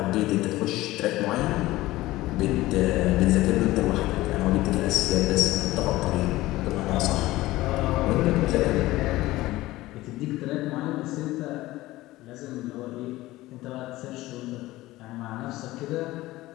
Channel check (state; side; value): quieter; right; 17.7 dB